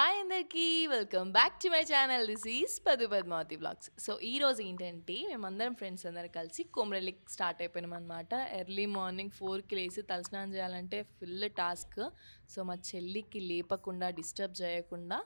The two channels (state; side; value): inverted; both; correlation -1.00